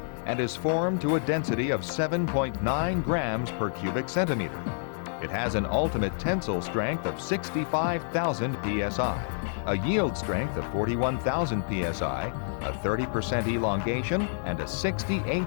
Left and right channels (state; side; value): silent; right; digital silence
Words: and is formed to a density of 7.9 grams per cubic centimeter. It has an ultimate tensile strength of 65,000 psi, a yield strength of 41,000 psi, a 30% elongation, and a 60